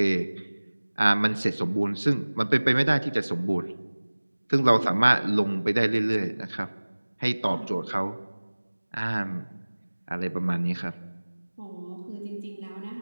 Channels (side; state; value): both; inverted; correlation -1.00